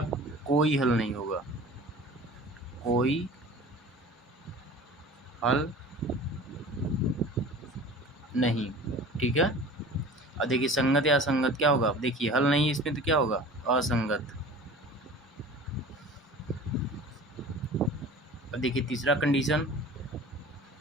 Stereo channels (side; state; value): both; normal; correlation 0.41